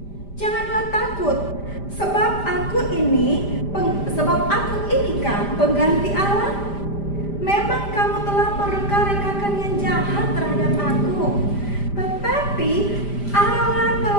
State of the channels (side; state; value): right; late; 5.0 ms